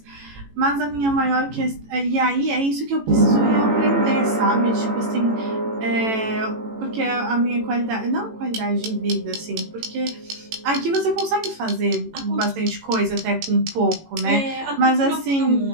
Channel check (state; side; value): late; left; 18 ms